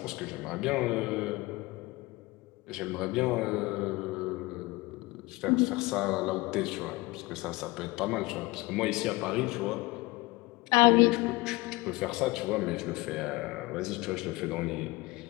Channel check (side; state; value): right; quieter; 22.0 dB